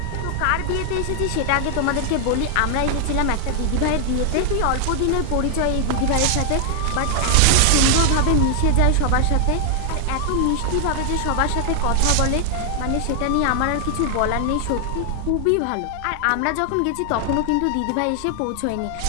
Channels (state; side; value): different; both; correlation 0.00